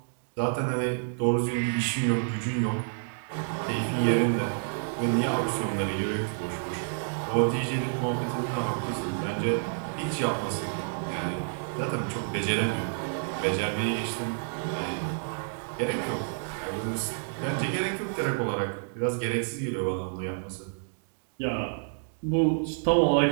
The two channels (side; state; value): left; silent; digital silence